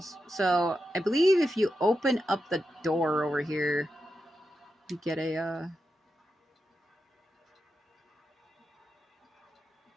So, I believe if you open up the door over here, you get a,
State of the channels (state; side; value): normal; both; correlation 0.88